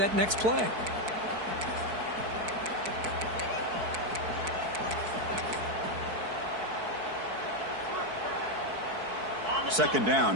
next play. second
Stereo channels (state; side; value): late; left; 4.6 ms